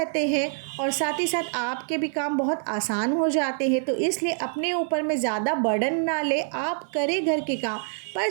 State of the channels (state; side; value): silent; left; digital silence